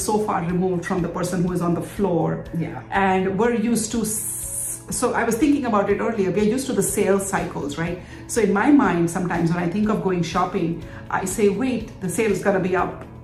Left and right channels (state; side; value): identical; both; correlation 1.00